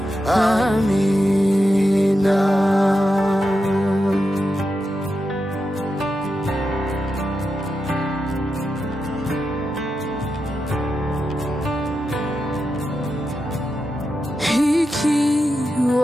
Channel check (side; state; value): both; normal; correlation 0.88